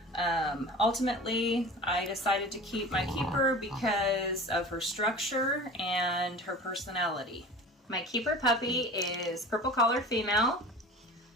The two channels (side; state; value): both; normal; correlation 0.38